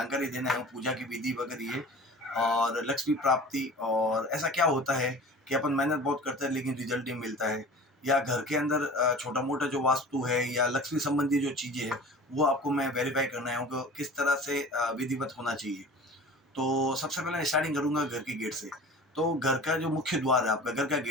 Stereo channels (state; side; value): normal; both; correlation 0.40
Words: देना है, पूजा की विधि वगैरह ये और लक्ष्मी प्राप्ति और ऐसा क्या होता है कि अपन मेहनत बहुत करते हैं लेकिन रिजल्ट नहीं मिलता है, या घर के अंदर छोटा मोटा जो वास्तु है या लक्ष्मी संबंधी जो चीज़ें हैं वो आपको मैं वेरीफाई करना है कि किस तरह से विधिवत होना चाहिए। तो सबसे पहले स्टार्टिंग करूँगा घर के गेट से। तो घर का जो मुख्य द्वार है, आपका घर का